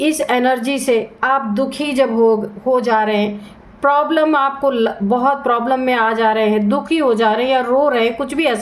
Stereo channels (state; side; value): identical; both; correlation 1.00